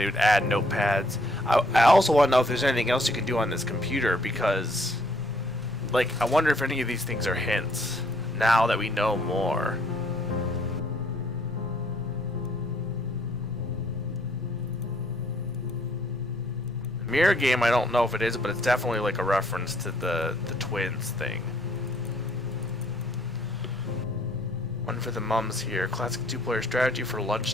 would add notepads. I also want to know if there's anything else you can do on this computer because, like, I wonder if any of these things are hints now that we know more. Mirror game, I don't know if it is, but it's definitely like a reference to the twins thing. One for the mums here. Classic two-player strategy for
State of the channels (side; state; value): both; normal; correlation 0.65